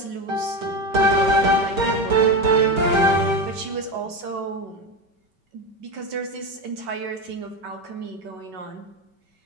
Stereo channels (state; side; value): late; left; 5.2 ms